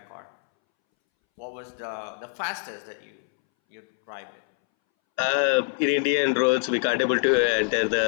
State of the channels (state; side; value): silent; right; 62 dB below the other